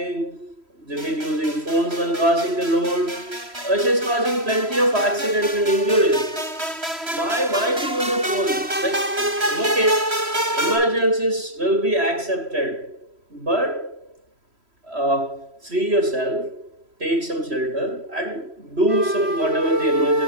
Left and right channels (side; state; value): left; late; 3.1 ms